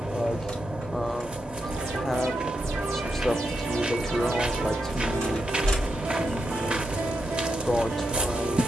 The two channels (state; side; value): normal; both; correlation 0.85